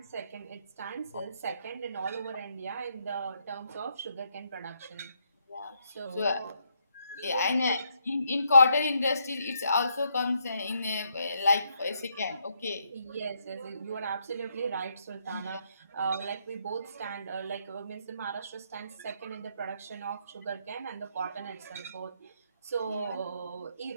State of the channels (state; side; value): inverted; both; correlation -0.75